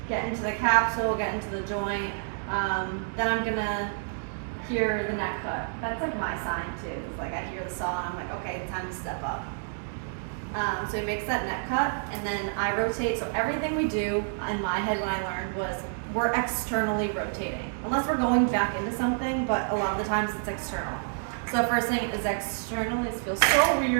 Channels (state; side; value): silent; left; digital silence